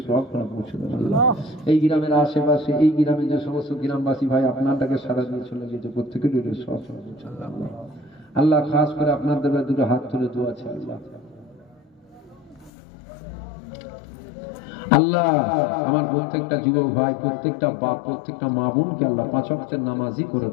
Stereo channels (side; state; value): right; drops out; at 12.7 s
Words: সব পৌঁছে দেন আল্লাহ। এই গ্রামের আশেপাশে, এই গ্রামের যে সমস্ত গ্রামবাসী ভাই আপনারটাকে সারা দিয়ে চলে গিয়েছে, প্রত্যেকের সব পৌঁছে দেন আল্লাহ। আল্লাহ খাস করে আপনার দরবারে দুটো হাত তুলে দোয়া আছে আল্লাহ। আল্লাহ আমার প্রত্যেকটা যুবক ভাই, প্রত্যেকটা বাপ, প্রত্যেকটা মা বোনকে আল্লাহ 5 ওয়াক্তের নামাজি করে